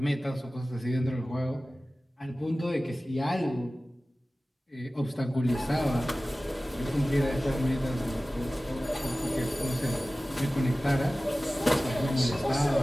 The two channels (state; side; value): normal; both; correlation 0.97